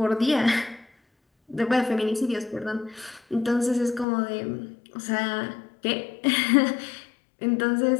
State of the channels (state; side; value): drops out; right; at 4.0 s